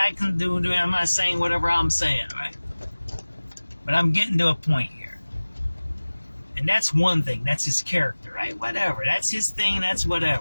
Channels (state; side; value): inverted; both; correlation -1.00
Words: can do it. I'm not saying whatever I'm saying, right? But I'm getting to a point here. And that's one thing. That's his character, right? Whatever. That's his thing. That's